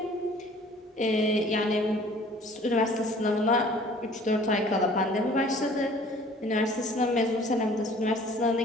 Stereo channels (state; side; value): normal; both; correlation 0.51